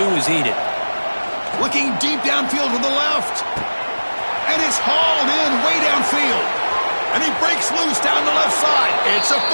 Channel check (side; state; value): both; inverted; correlation -1.00